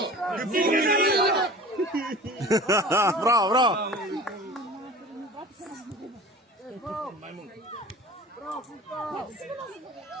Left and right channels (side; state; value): both; normal; correlation 0.40